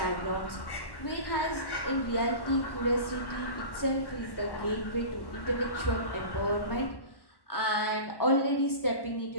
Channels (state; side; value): late; right; 1.1 ms